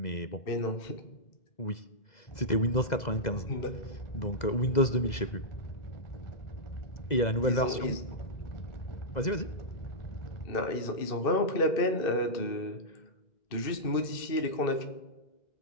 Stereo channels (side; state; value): right; late; 2.0 ms